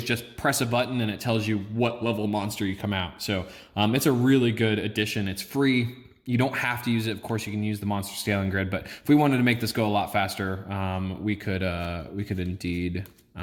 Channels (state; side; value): identical; both; correlation 1.00